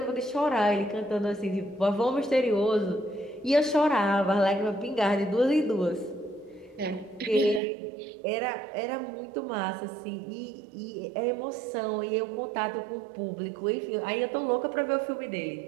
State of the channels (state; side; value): drops out; left; at 7.6 s